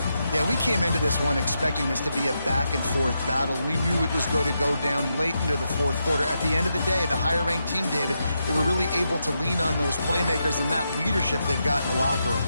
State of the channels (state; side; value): inverted; both; correlation -0.85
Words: Yeah, we came into this one expecting this to be a back-and-forth battle. We knew it was going to go down late into the fourth quarter. At the end of the day, the higher-ranked team, David, they were really able to lean on those playmakers and that leadership they've got in the locker room.